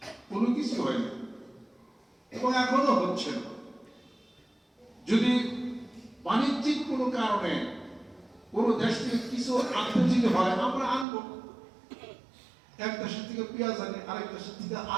কোনো কিছু হয় না এবং এখনো হচ্ছে না। যদি বাণিজ্যিক কোনো কারণে কোনো দেশ থেকে কিছু আনতে যদি হয়, আমরা আনবো। এক দেশের থেকে পেঁয়াজ আনি, আরেক দেশের থেকে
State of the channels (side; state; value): left; drops out; at 11.1 s